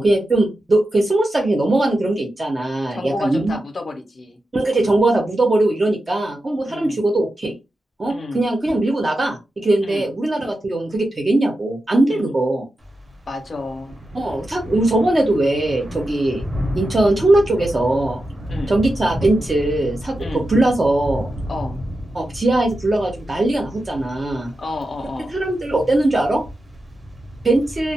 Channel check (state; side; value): normal; both; correlation 0.90